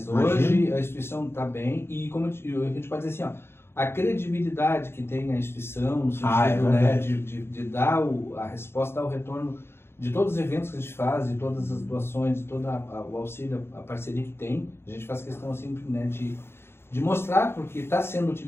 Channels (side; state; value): right; late; 0.12 ms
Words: hoje a instituição está bem e como a gente pode dizer assim, a credibilidade que tem a instituição, no Ah, é sentido, né, verdade. de dar a resposta, dar o retorno de todos os eventos que a gente faz, de todas as doações, de todo o auxílio, a parceria que tem. A gente faz questão assim, né, de mostrar, porque está sendo